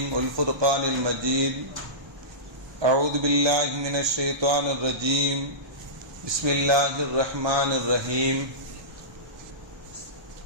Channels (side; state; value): left; late; 1.2 ms